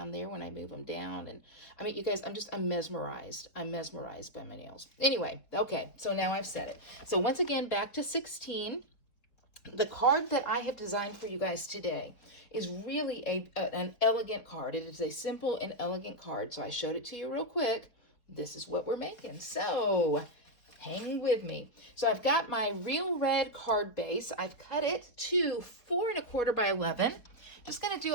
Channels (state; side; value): late; right; 4.1 ms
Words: there when I move them down. And I mean, you guys, I'm mesmerized. I'm mesmerized by my nails. Anyway, okay, so now I've said it. So once again, back to 16. The card that I have designed for you guys today is really an elegant card. It is a simple and elegant card. So I showed it to you real quick. This is what we're making. So hang with me. So I've got my real red card base. I've cut it to 4 1/4 by 11. Just going to do